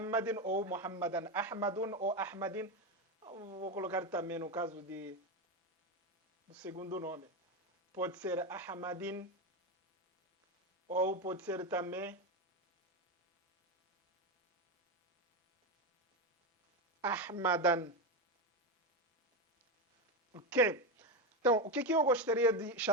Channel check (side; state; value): both; normal; correlation 0.13